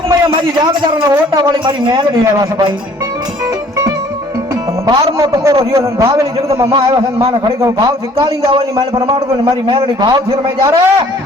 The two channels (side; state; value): both; normal; correlation 0.56